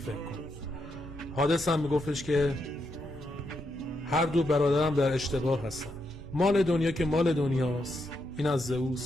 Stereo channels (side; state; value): both; normal; correlation 0.81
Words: کن. هادس هم میگفتش که هر دو برادرم در اشتباه هستن. مال دنیا که مال دنیاست، این از